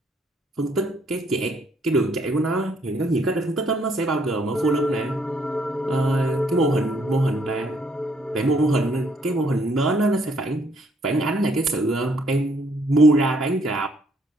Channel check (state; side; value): normal; both; correlation 0.68